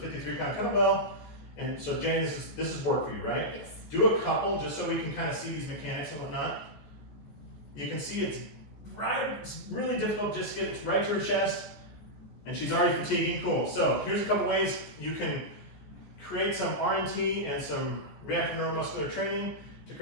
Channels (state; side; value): late; right; 14 ms